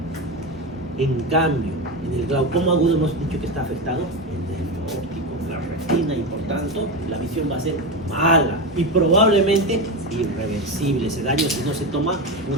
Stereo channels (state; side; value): normal; both; correlation 0.17